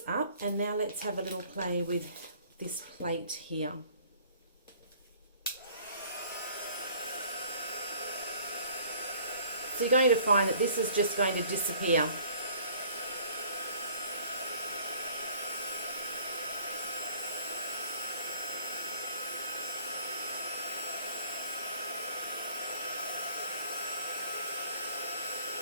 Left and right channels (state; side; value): inverted; both; correlation -0.54